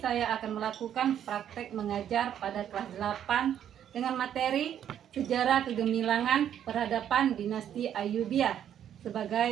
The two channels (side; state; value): left; quieter; 9.9 dB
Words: akan melakukan praktek mengajar pada kelas 8 dengan materi Sejarah Kegemilangan Peradaban Dinasti Ayyubiyah